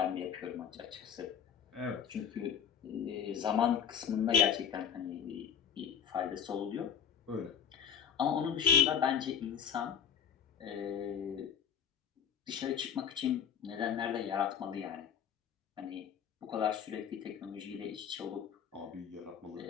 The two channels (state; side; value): quieter; right; 8.2 dB